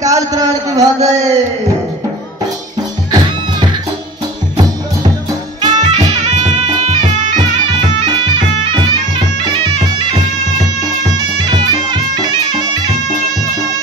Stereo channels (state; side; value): normal; both; correlation 0.39